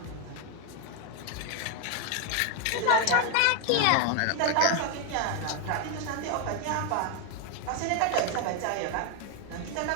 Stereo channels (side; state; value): both; different; correlation 0.01